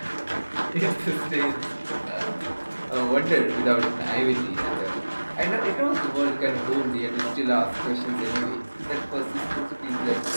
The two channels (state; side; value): inverted; both; correlation -1.00